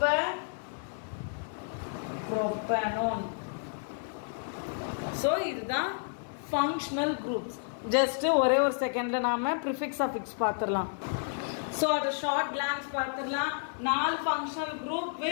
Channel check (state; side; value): silent; right; 57 dB below the other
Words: ப்ரோப்பனோன். ஸோ இதுதான் ஃபங்க்ஷனல் குரூப்ஸ். ஜஸ்ட் ஒரே ஒரு செகண்ட்ல நாம ப்ரிஃபிக்ஸ் அஃபிக்ஸ் பார்த்துடலாம். ஸோ அது ஷார்ட் கிளான்ஸ் பார்த்துடலாம். 4 ஃபங்க்ஷனல் குரூப்